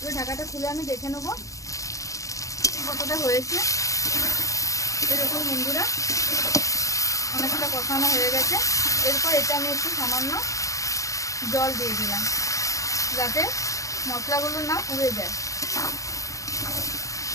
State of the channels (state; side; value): late; right; 0.16 ms